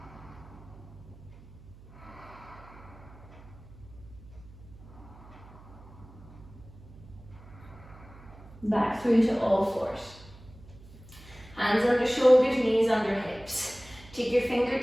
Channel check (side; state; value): right; noise; hum, 20 dB below the sound